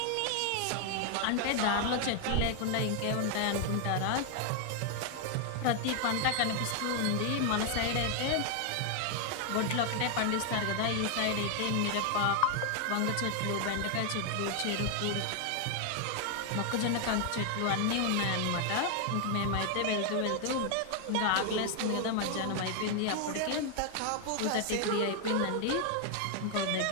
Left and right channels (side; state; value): both; different; correlation 0.00